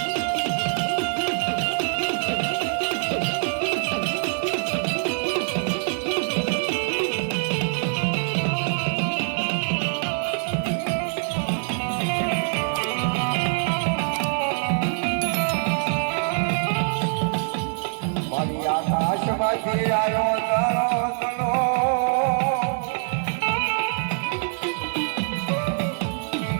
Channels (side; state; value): left; silent; 62 dB below the other